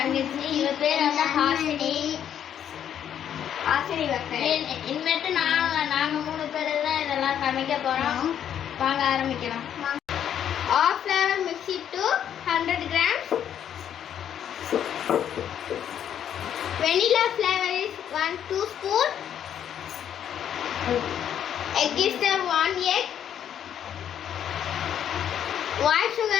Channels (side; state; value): right; quieter; 9.5 dB